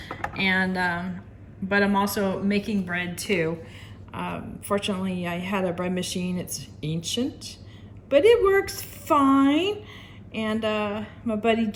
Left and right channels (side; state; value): both; identical; correlation 1.00